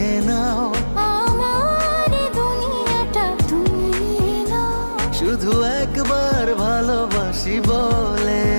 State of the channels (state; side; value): inverted; both; correlation -1.00